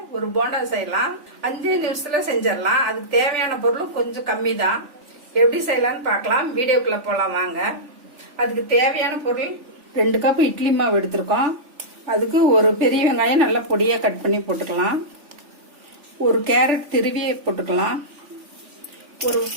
ஒரு போண்டா செய்யலாம். 5 நிமிஷத்துல செஞ்சிடலாம். அதுக்கு தேவையான பொருள் கொஞ்சம் கம்மி தான். எப்படி செய்யலாம்னு பார்க்கலாம். வீடியோக்குள்ள போலாம் வாங்க. அதுக்கு தேவையான பொருள் 2 கப் இட்லி மாவு எடுத்திருக்கோம். அதுக்கு ஒரு பெரிய வெங்காயம் நல்லா பொடியா கட் பண்ணி போட்டுக்கலாம். ஒரு கேரட் திருவி போட்டுக்கலாம். ஒரு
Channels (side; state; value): left; late; 3.5 ms